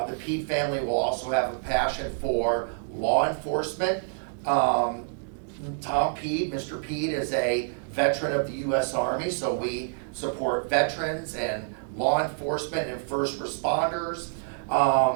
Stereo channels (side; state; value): left; silent; digital silence